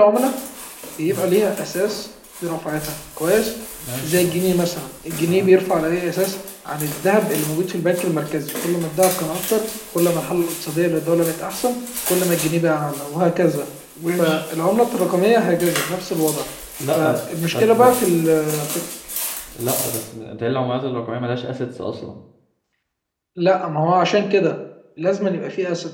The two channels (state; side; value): identical; both; correlation 1.00